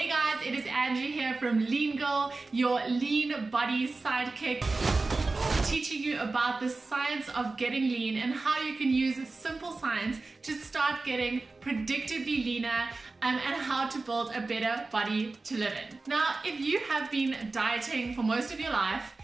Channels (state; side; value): quieter; left; 3.6 dB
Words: guys, it is Angie here from Lean Girl, your lean body sidekick, teaching you about the science of getting lean and how you can use simple science to start getting predictably leaner and how to build a better body to live in. Now, if you have been dieting for most of your life,